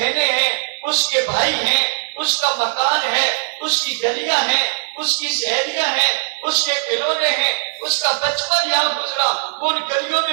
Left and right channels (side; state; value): left; silent; digital silence